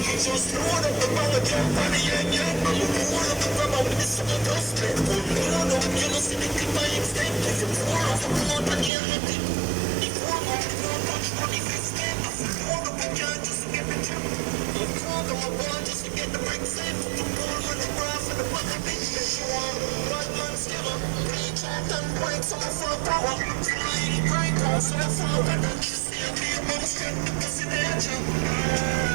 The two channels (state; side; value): drops out; left; at 8.9 s